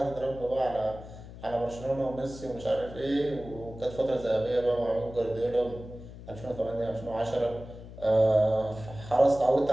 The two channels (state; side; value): noise; left; hum, 15 dB below the sound